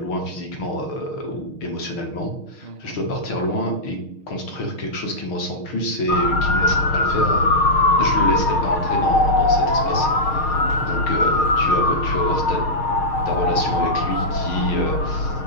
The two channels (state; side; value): late; right; 6.5 ms